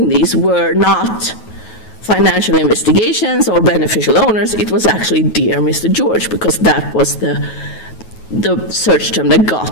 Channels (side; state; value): right; late; 9.3 ms